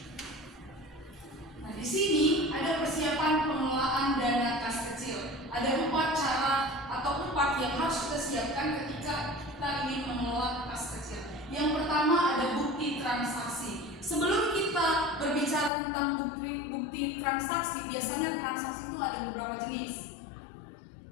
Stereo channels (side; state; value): right; drops out; at 15.7 s